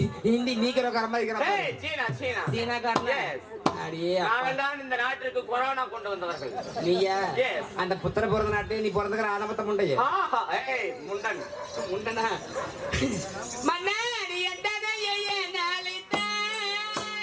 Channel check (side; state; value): both; identical; correlation 1.00